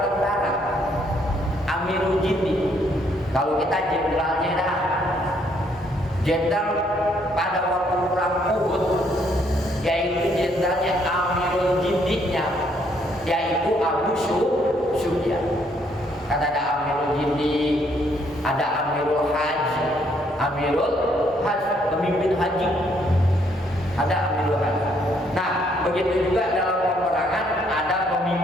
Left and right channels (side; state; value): both; normal; correlation 0.69